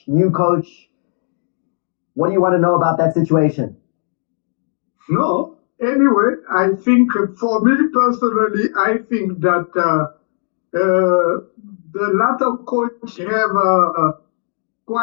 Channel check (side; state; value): right; silent; 68 dB below the other